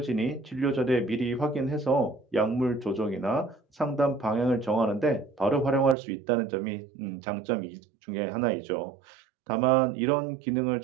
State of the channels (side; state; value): left; drops out; at 6.0 s